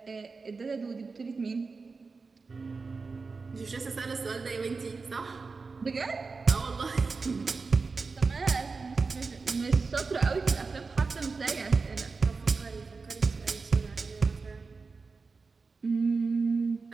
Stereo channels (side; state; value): left; quieter; 4.4 dB